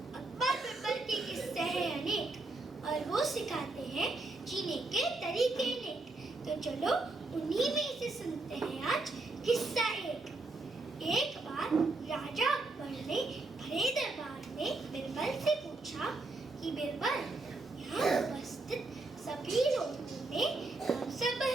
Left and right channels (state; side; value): quieter; left; 3.3 dB